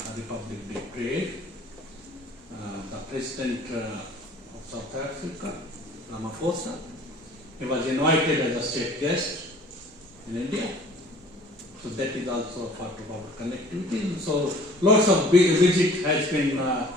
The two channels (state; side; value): normal; both; correlation 0.51